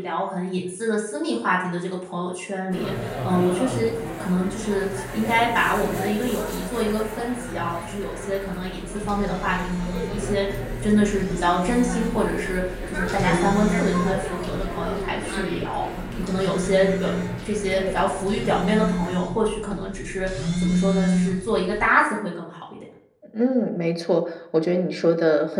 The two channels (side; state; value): both; identical; correlation 1.00